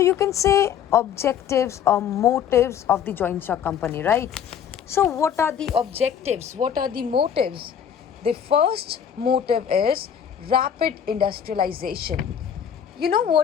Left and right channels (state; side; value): quieter; right; 8.5 dB